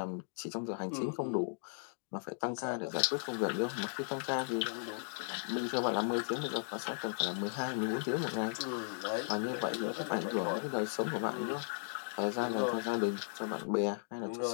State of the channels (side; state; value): right; silent; digital silence